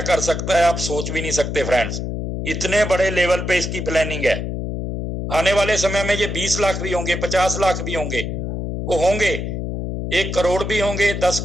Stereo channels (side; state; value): left; noise; hum, 4 dB below the sound